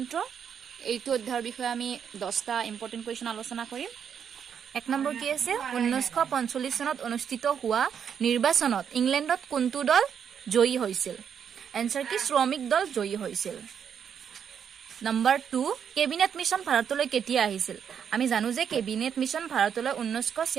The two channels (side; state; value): left; quieter; 7.8 dB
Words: এইটো অধ্যায়ৰ বিষয়ে আমি 10টা ইম্পৰ্টেন্ট কুৱেশ্যন আলোচনা কৰিম এক নম্বৰ কি আছে 1945 চনত অনুষ্ঠিত হোৱা নিৰ্বাচনত ইংলেণ্ডত কোনটো দল জয়ী হৈছিল এনসাৰ কি শ্ৰমিক দল জয়ী হৈছিল নম্বৰ 2 কেবিনেট মিশন ভাৰতলৈ কেতিয়া আহিছিল আমি জানো যে কেবিনেট মিশন ভাৰতলৈ